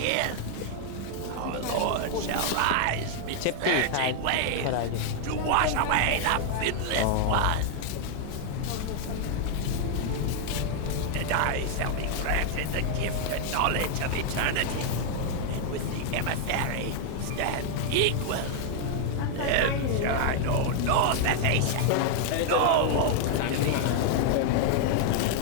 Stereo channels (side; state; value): both; different; correlation 0.00